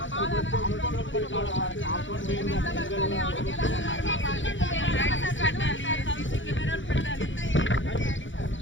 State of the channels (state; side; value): late; right; 0.55 ms